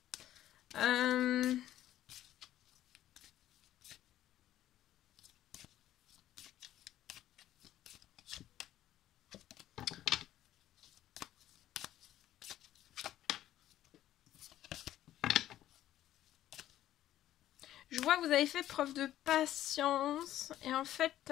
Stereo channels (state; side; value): quieter; right; 12.9 dB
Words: Je vois que vous avez fait preuve de patience et en fait